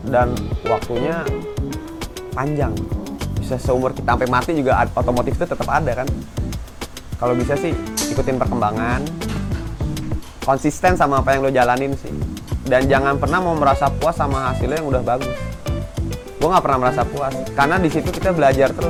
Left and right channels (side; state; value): both; identical; correlation 1.00